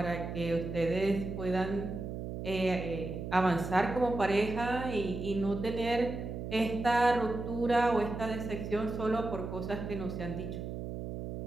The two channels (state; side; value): noise; right; hum, 6 dB below the sound